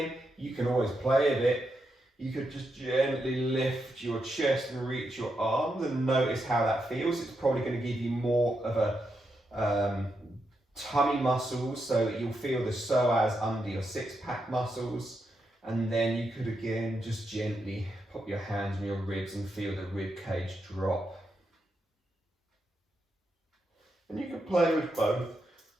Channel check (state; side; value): normal; both; correlation 0.84